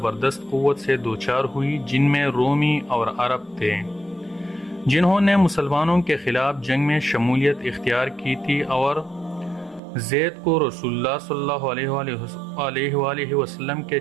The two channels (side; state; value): left; drops out; at 9.8 s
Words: قوت سے دوچار ہوئی، جن میں رومی اور عرب تھے جنہوں نے مسلمانوں کے خلاف جنگ میں شمولیت اختیار کی تھی، اور زید کو رسول اللہ صلی اللہ علیہ وآلہ وسلم کے